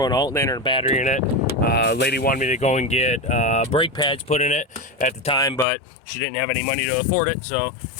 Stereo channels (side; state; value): right; drops out; at 5.7 s